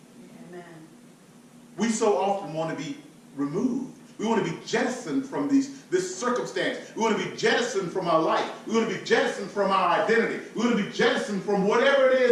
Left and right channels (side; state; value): both; identical; correlation 1.00